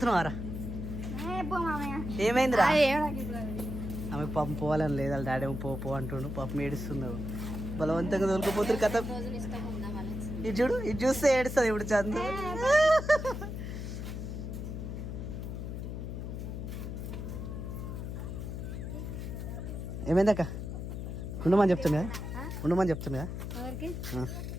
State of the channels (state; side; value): noise; left; hum, 5 dB below the sound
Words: ఆరా ఏమైందిరా ఆమె పాపం పోవాలని లేదు వాళ్ళ డాడీ పో అంటుండు పాపం ఏడుస్తున్నావు బలవంతంగా తోలుకోపోతారు కథ ఇది చూడు ఇది చూస్తే ఏడుస్తుంది ఇప్పుడు చందు ఏమైందక్క ఉండమని చెప్తున్నా